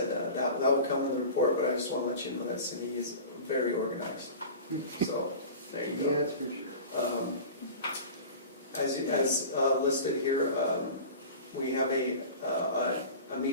that will come in the report, but I just want to let you know that Cindy is very organized. So there you go. Yes, for sure. As listed here, we have a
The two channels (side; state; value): both; inverted; correlation -0.36